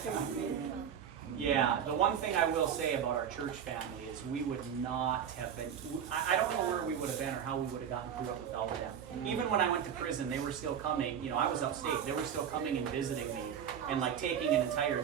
Yeah, the one thing I will say about our church family is we would not have been, I don't know where we would have been or how we would have gotten through it without them. Even when I went to prison, they were still coming, you know, I was upstate, they were still coming and visiting me and like taking an entire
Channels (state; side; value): quieter; left; 8.6 dB